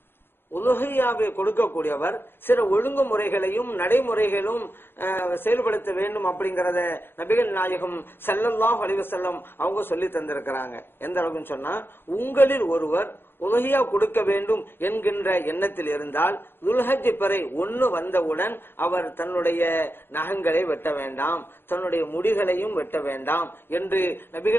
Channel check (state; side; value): late; right; 0.10 ms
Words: உலுஹியாவை கொடுக்கக்கூடியவர் சில ஒழுங்குமுறைகளையும் நடைமுறைகளும் செயல்படுத்த வேண்டும் அப்படிங்கறத நபிகள் நாயகம் ஸல்லல்லாஹு அலைஹி வஸல்லம் அவங்க சொல்லி தந்திருக்கிறாங்க. எந்த அளவுக்கு சொன்னா, உங்களில் ஒருவர் உலுஹியா கொடுக்க வேண்டும் என்கின்ற எண்ணத்தில் இருந்தால் துல்ஹஜ் பிறை 1 வந்தவுடன் அவர் தன்னுடைய நகங்களை வெட்ட வேண்டாம், தன்னுடைய முடிகளையும் வெட்ட வேண்டாம் என்று